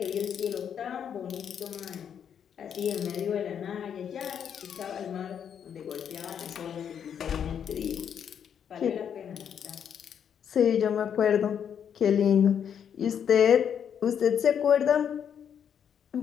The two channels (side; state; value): right; quieter; 8.3 dB